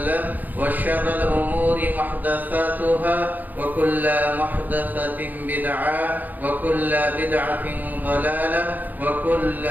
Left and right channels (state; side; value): late; left; 0.085 ms